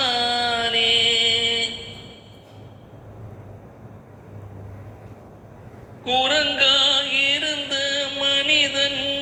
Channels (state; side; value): identical; both; correlation 1.00